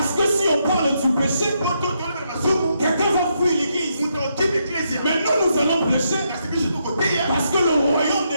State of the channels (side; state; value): both; inverted; correlation -0.79